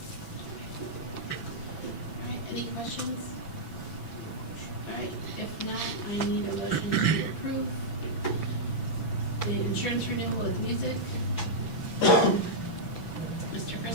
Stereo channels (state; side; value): late; right; 6.0 ms